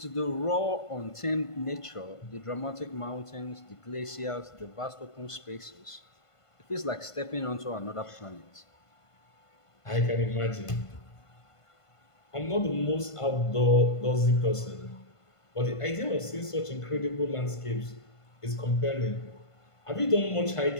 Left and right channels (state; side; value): late; right; 1.5 ms